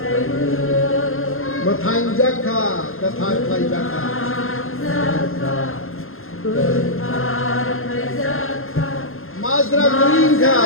mà thành giác kha cái thành thay giác kha Mazra green kha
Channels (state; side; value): late; right; 0.61 ms